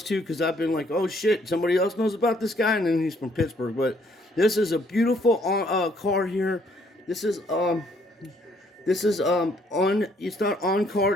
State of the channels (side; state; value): both; normal; correlation 0.66